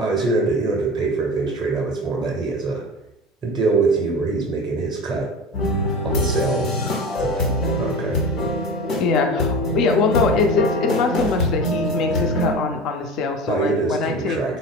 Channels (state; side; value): normal; both; correlation 0.31